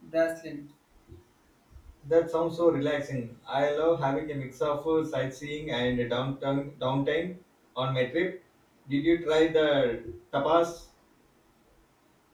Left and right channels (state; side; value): identical; both; correlation 1.00